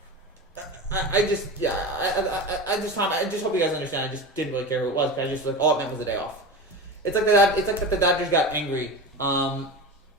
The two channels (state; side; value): normal; both; correlation 0.26